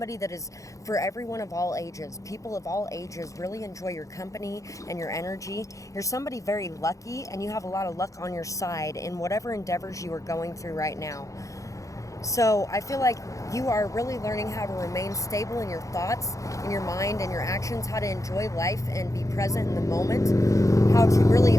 that is for everyone of all ages. People of all ages really enjoy your company and your energy. You're somebody very lucky, and you have a lot of luck on your side in whatever endeavors you are going through right now. So I feel like you are really learning how to remain stable in your thoughts, in your mind, and your actions, how to enjoy life and be present in the moment, how to really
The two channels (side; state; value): right; late; 0.16 ms